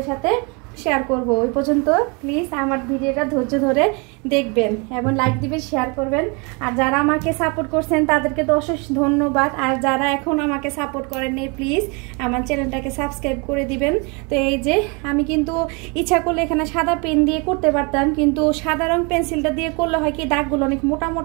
সাথে শেয়ার করব। ওই পর্যন্ত প্লিজ আমার ভিডিওটা ধৈর্য ধরে দেখবেন এবং লাইক দিবেন, শেয়ার করবেন। আর যারা আমাকে সাপোর্ট করছেন তাদেরকে তো অশেষ ধন্যবাদ। আর যারা এখন আমাকে সাপোর্ট করেননি প্লিজ আমার চ্যানেলটাকে সাবস্ক্রাইব করে দিবেন। তো এই যে আমি কিন্তু ইচ্ছা করলে এখানে সাদা পেন দিয়ে করতে পারতাম, কিন্তু সাদা রং পেন্সিলটা দিয়ে করলে হয় কি দাগগুলো অনেক মোটা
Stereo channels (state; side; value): quieter; left; 31.4 dB